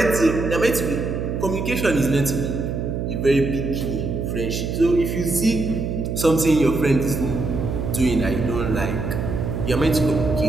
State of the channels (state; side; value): noise; right; hum, 3 dB below the sound